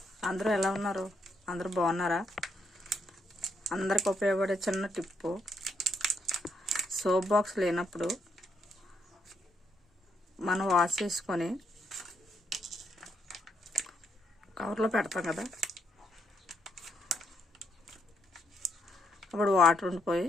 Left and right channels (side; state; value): both; normal; correlation 0.76